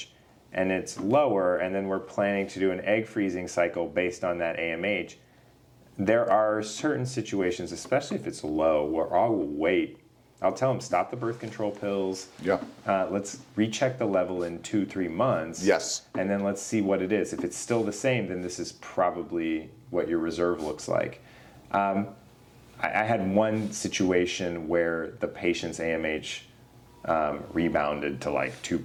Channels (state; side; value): identical; both; correlation 1.00